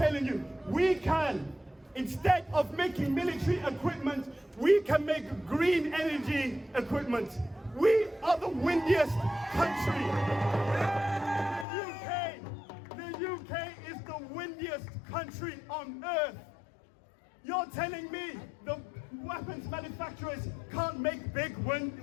you, we can, instead of making military equipment, we can make green energy equipment. We are the windiest country. The UK is the windiest country on earth. You're telling me the weapons manufacturers can't make big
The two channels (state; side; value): drops out; right; at 11.7 s